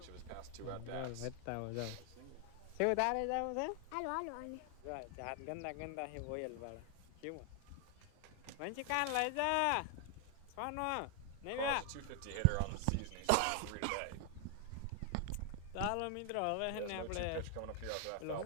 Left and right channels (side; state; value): both; different; correlation 0.00